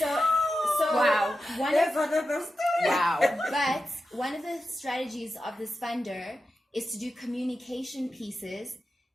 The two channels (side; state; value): both; normal; correlation 0.91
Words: Wow. But one of the strategies of this funder is to do communication pieces